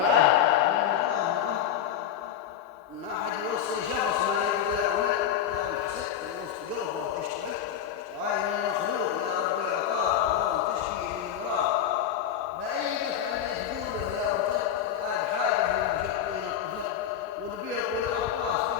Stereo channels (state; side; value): quieter; right; 9.5 dB